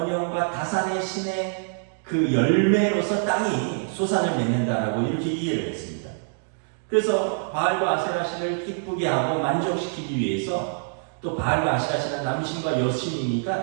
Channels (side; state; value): left; silent; digital silence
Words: 다산의 신의 그 열매로서 땅이 소산을 맺는다라고 이렇게 이해를 했습니다. 그래서 바알과 아세라 신을 기쁘게 하고 만족시키기 위해서, 또 바알과 아세라 신은 남신과